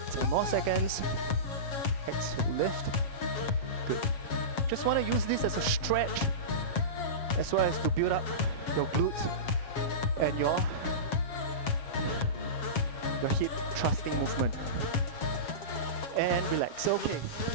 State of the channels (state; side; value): late; right; 7.3 ms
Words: More seconds. Exhale, lift. Good. Just want to use this as a stretch as well as to build up your glutes and your hip thrusting movement. And relax. Okay,